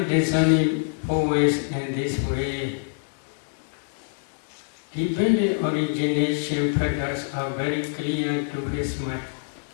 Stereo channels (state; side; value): silent; right; digital silence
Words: discerning four ways in this way, dependent origination factors are very clear to his mind.